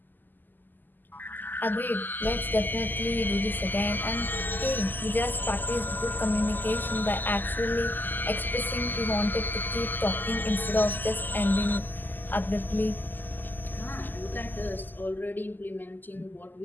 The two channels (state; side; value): late; right; 0.089 ms